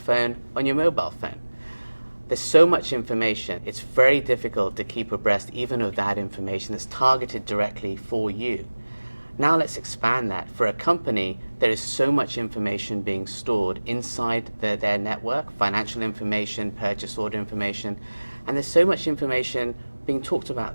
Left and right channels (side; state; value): both; inverted; correlation -1.00